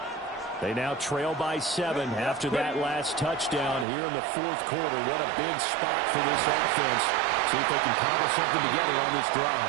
They now trail by 7 after that last touchdown here in the 4th quarter. What a big spot for this offense. See if they can cobble something together on this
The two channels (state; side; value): drops out; left; at 3.9 s